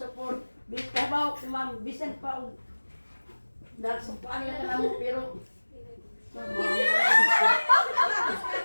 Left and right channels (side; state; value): both; inverted; correlation -1.00